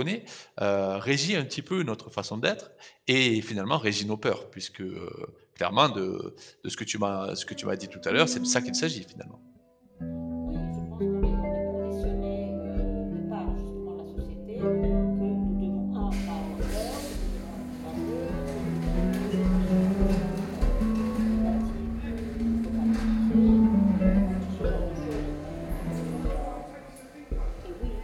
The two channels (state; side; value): identical; both; correlation 1.00